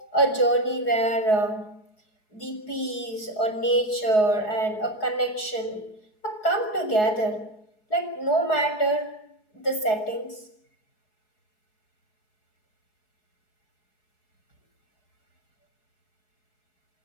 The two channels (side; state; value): right; late; 4.7 ms